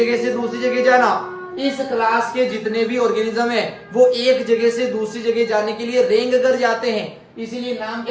से दूसरी जगह जाना। इस क्लास के जितने भी ऑर्गेनिज्म है वो एक जगह से दूसरी जगह जाने के लिए रेंग कर जाते हैं, इसीलिए नाम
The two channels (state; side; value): identical; both; correlation 1.00